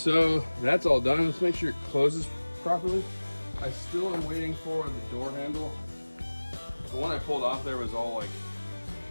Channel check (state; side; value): inverted; both; correlation -1.00